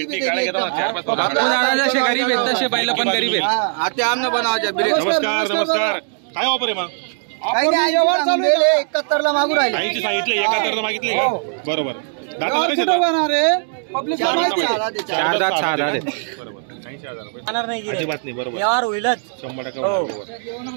गरीब आहेत तसे बैल पण गरीब आहेत. आता आमने बनवायच्या. नमस्कार. काय ऑफर आहे मग? काही नाही, व्यवहार चालू आहे. 71 ला मागू राहिले. 80 सांगितले, 71 मागितले. बरोबर. कुठं बनणार आहे? पब्लिक 4 दात 6 दात. बरोबर. जाणार नाही गिऱ्हाईक. अजिबात नाही, बरोबर. व्यवहार होईलच. 100% हो. बरोबर.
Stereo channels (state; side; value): silent; left; digital silence